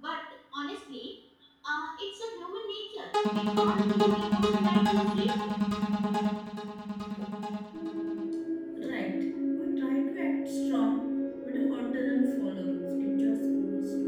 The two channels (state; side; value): identical; both; correlation 1.00